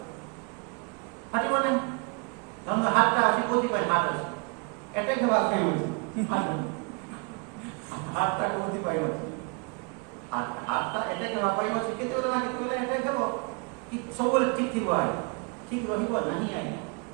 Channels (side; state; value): left; quieter; 32.9 dB